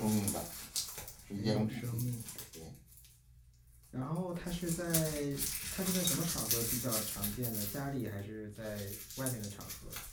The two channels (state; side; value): identical; both; correlation 1.00